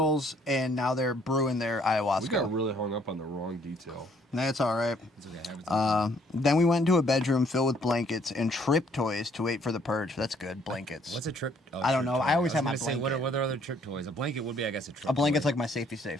and now they're brewing their We got ayahuasca. really hung up on the wrong detail. That's all right. It's okay. Then we went into a bedroom filled with blankets and trip toys to wait for the purge. That's good. Blankets. What's a trip? Oh, I don't trip know. toy. I always was have my gonna say, blanket. what are other trip toys? A blanket would be, I guess, a trip. A blanket's toy. like my safety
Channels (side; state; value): both; normal; correlation 0.64